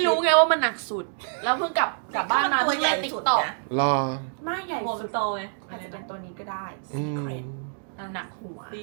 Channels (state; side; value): silent; left; digital silence